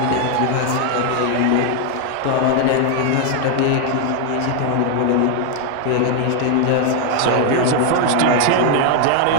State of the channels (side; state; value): both; different; correlation 0.00